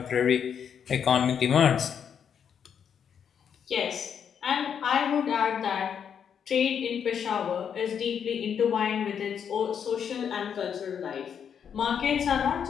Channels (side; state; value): right; quieter; 7.8 dB